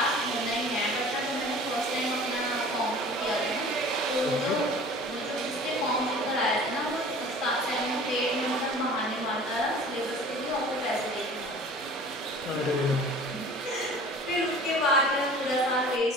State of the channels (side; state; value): both; normal; correlation 0.44